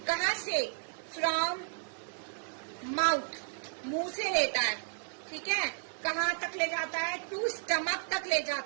कहाँ से? From mouth. मुंह से लेता है, ठीक है? कहाँ तक ले जाता है? टू स्टमक तक ले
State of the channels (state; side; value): silent; left; digital silence